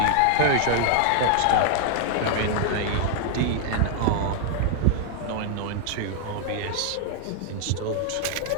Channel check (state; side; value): different; both; correlation 0.00